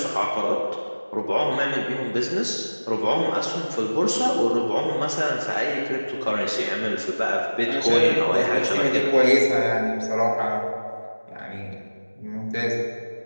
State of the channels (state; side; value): inverted; both; correlation -1.00